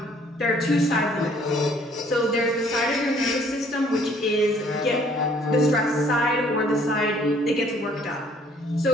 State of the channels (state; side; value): normal; both; correlation 0.60